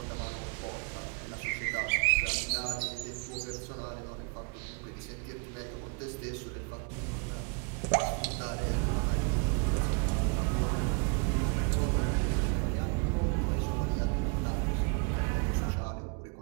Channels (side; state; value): left; quieter; 35.4 dB